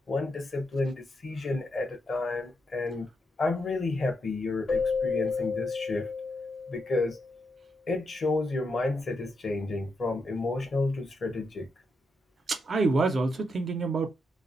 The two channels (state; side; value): normal; both; correlation 0.82